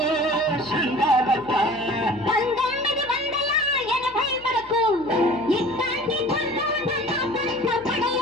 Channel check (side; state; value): left; noise; hum, 22 dB below the sound